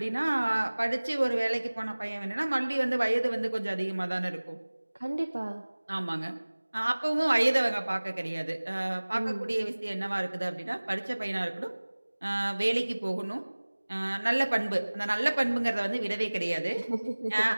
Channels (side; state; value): both; inverted; correlation -1.00